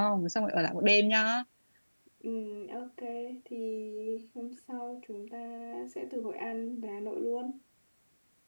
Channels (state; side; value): inverted; both; correlation -1.00